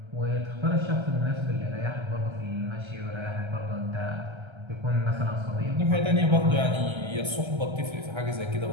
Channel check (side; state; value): left; late; 1.3 ms